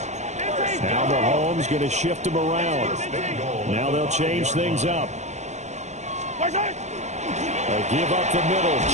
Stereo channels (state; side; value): late; left; 0.33 ms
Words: Now Mahomes going to shift him around. Now they'll change things up. A give up the middle.